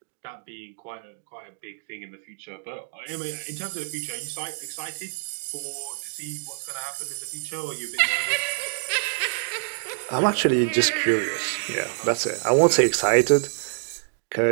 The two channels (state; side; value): silent; left; digital silence